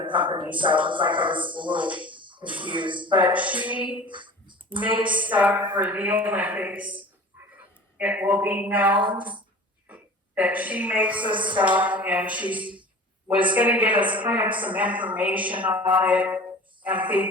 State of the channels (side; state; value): both; normal; correlation 0.40